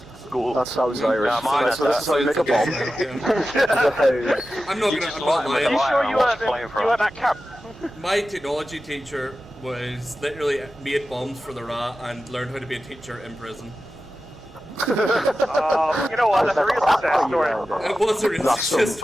school. That sounds Irish. So this is how you make a bomb. I'm not lying. Are you sure you were at that camp? My technology teacher was literally made bombs for the RA and learned how to be a teacher in prison. You know what? That's a real success story. It was a real success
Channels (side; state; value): both; normal; correlation 0.93